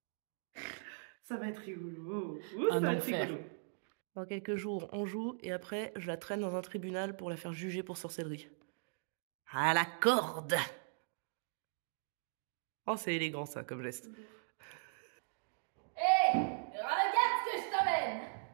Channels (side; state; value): left; silent; digital silence